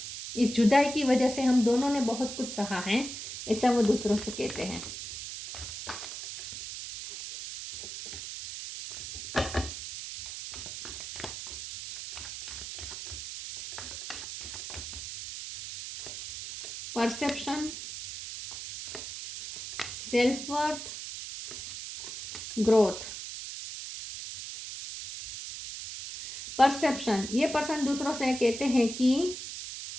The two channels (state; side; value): noise; right; hiss, 9 dB below the sound